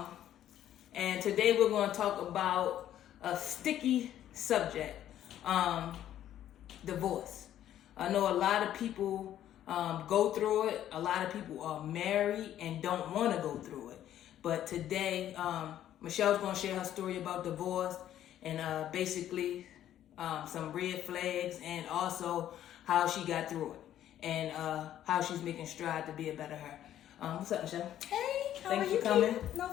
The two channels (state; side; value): quieter; right; 11.6 dB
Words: And today we're gonna talk about a sticky subject, divorce. I know a lot of people go through it. A lot of people are married and don't want to go through it. But today, Michelle's going to share her story about divorce and basically some red flags and also how she got through it and how she's making strides to be a better her. What's up, Michelle? Hey, how Thanks are you? for coming. No